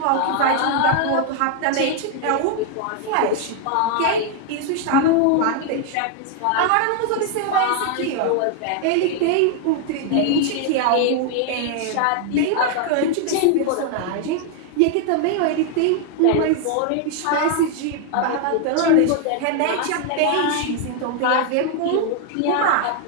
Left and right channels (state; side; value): different; both; correlation 0.00